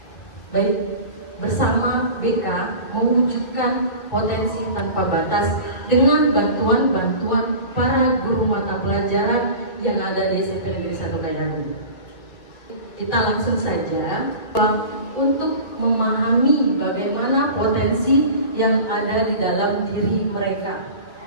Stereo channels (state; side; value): late; right; 2.2 ms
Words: Baik, bersama BK mewujudkan potensi tanpa batas dengan bantuan-bantuan para guru mata pelajaran yang ada di SMP Negeri 1 Kayangan. Kita langsung saja untuk memahami bagaimana potensi yang ada di dalam diri mereka.